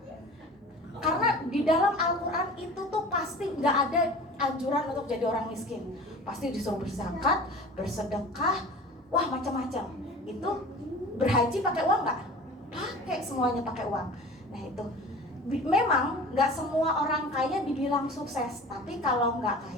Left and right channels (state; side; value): normal; both; correlation 0.40